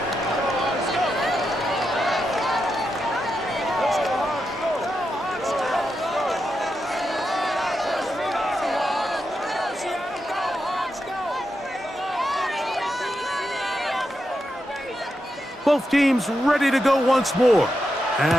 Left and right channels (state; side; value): normal; both; correlation 0.86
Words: Both teams ready to go once more